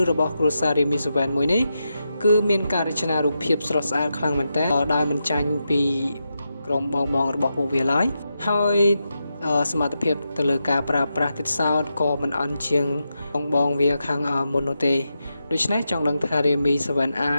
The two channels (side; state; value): both; inverted; correlation -0.87